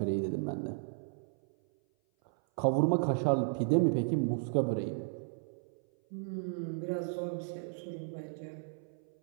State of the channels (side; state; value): left; silent; 55 dB below the other